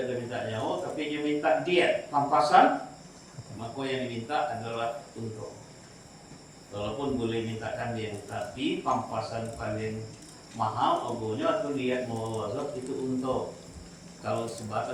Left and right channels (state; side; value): identical; both; correlation 1.00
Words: minta nyawa, tapi dia minta diet pampasan, maka yang diminta adalah untung. Walaupun boleh mintakan dia, tapi pampasan paling mahal ogonya atau diet muwaladzah itu untung. Kalau